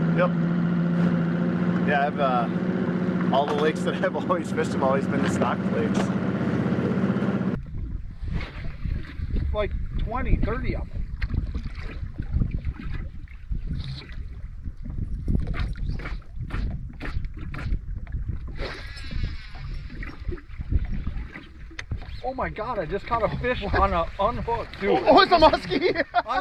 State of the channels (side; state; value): both; identical; correlation 1.00